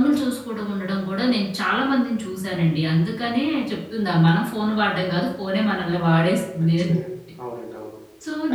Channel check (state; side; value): identical; both; correlation 1.00